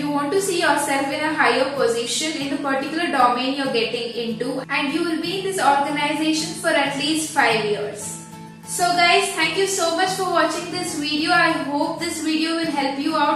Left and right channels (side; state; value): both; identical; correlation 1.00